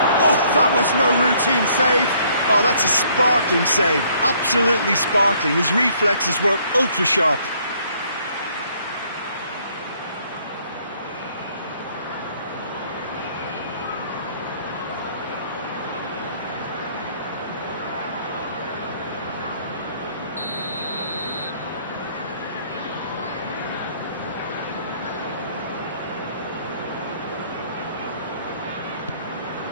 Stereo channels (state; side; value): inverted; both; correlation -0.63